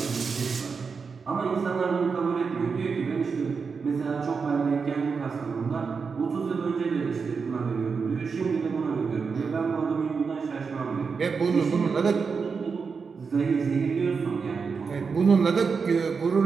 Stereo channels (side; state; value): left; quieter; 5.3 dB